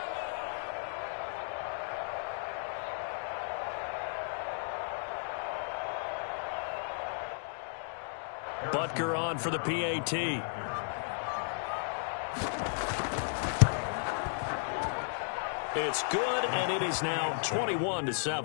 Butker on for the PAT. It's good, and it is now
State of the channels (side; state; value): right; silent; digital silence